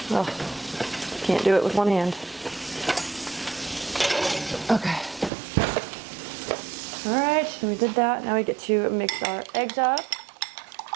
Oh, can't do it with one hand. Okay. All right, so we did that. Now we get to mix our eggs up.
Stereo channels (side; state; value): left; drops out; at 5.3 s